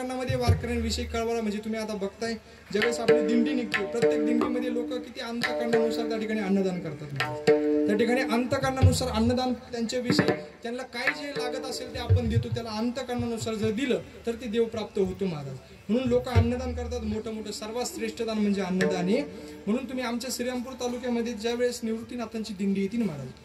वारकऱ्यांविषयी कळवळा म्हणजे तुम्ही आता बघताय ज्यावेळेस आपली दिंडी निघते प्रत्येक दिंडीमध्ये लोक किती अंतकरणानुसार त्या ठिकाणी अन्नदान करतात. त्या ठिकाणी अंतकरणानुसार अन्नदान त्यांच्याविषयी त्यांना काय जे लागत असेल ते आपण देतो. त्याला अंतकरणानुसार जर दिलं तर ते देव प्राप्त होतो महाराज. म्हणून लोक अन्नदान करतात. मोठं मोठं सर्वात श्रेष्ठ दान म्हणजे अन्नदान आहे. म्हणून तुम्ही आमच्या श्रीरामपूर तालुक्यामध्ये ज्या वेळेस निवृत्तीनाथांची दिंडी येतील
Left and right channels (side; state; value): both; identical; correlation 1.00